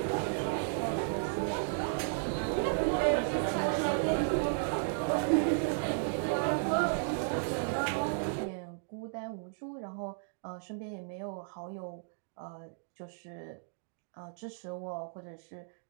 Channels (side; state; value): left; silent; digital silence